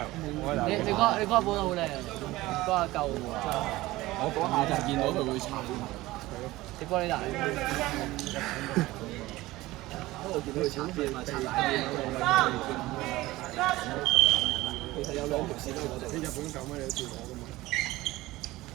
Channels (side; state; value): left; quieter; 18.4 dB